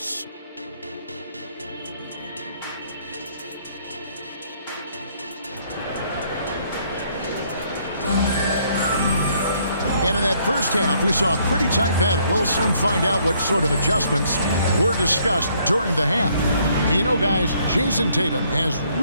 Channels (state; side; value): inverted; both; correlation -0.67